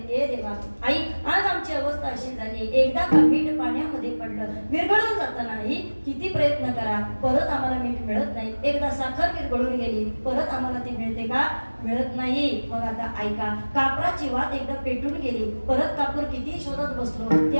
ए देवा आई आज आमची अवस्था अशी झाली, एकदा का मीठ पाण्यामध्ये पडलं विरघळून जात नाही, किती प्रयत्न करा परत आम्हाला मीठ मिळत नाही. एकदा साखर विरघळून गेली परत आम्हाला ती मिळते का, मिळत नाही. मग आता ऐका, कापराची वात एकदा पेटून गेली, परत कापूर किती शोधत बसलो ते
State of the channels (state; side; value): inverted; both; correlation -1.00